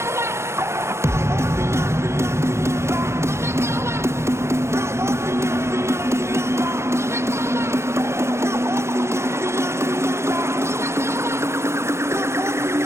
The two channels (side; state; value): left; late; 0.13 ms